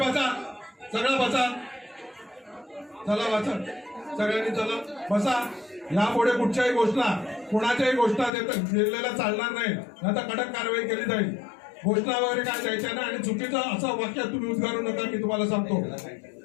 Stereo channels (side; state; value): right; drops out; at 8.3 s